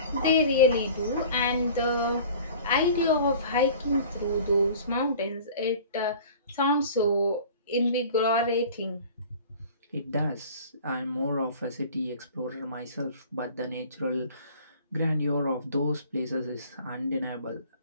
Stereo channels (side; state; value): both; inverted; correlation -0.44